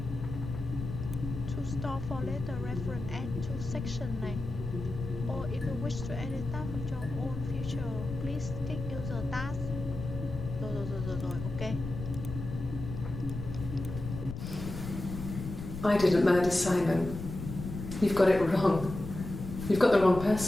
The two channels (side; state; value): left; noise; rumble, 8 dB below the sound